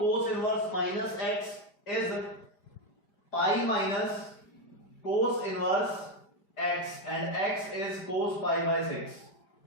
inverse minus x is pi minus cos inverse x and x is cos pi by 6।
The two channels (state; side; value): late; right; 5.0 ms